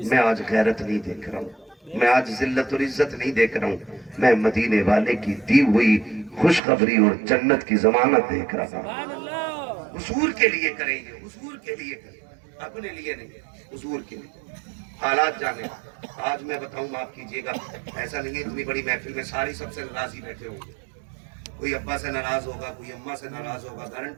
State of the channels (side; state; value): left; drops out; at 6.6 s